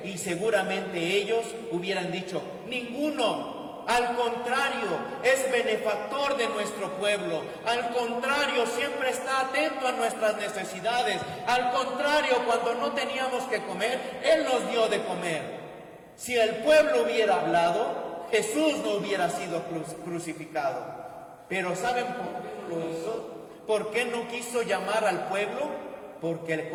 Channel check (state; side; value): identical; both; correlation 1.00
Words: Y seguramente ellos hubieran dicho: ninguno. Al contrario, es benefactor de nuestro pueblo. Al contrario, siempre está atento a nuestras necesidades. Al contrario, cuando no teníamos que comer, Él nos dio de comer. Si el pueblo hubiera hablado, Jesús no hubiera sido crucificado. Pero ¿saben por qué no lo hizo? ¿Por qué no quiso llamar al pueblo? Porque le